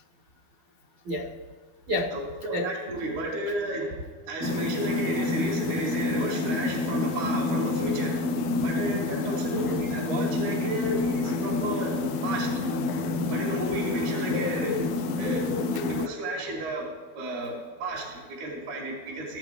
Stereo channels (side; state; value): left; late; 12 ms